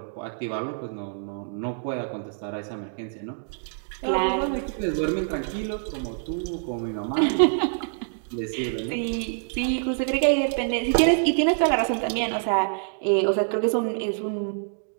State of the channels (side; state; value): left; silent; digital silence